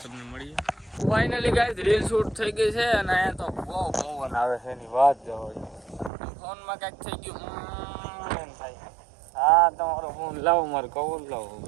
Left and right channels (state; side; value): drops out; left; at 6.1 s